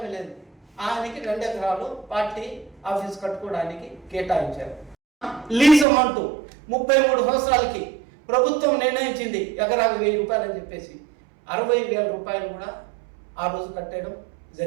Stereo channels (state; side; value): drops out; left; at 5.9 s